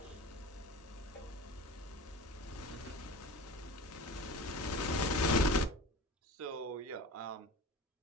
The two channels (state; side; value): normal; both; correlation 0.36